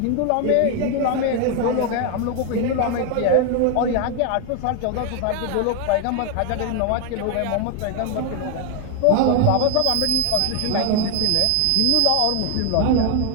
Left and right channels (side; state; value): both; different; correlation 0.01